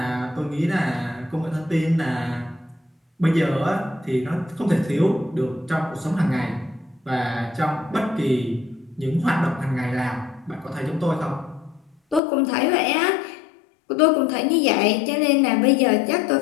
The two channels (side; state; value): right; drops out; at 12.2 s